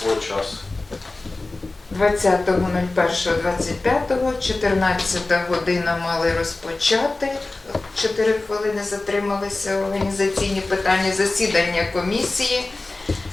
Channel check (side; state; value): right; quieter; 3.1 dB